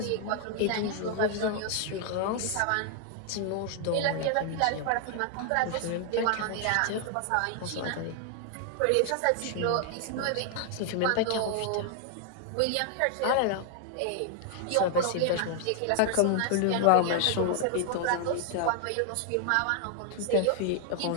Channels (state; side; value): different; both; correlation 0.00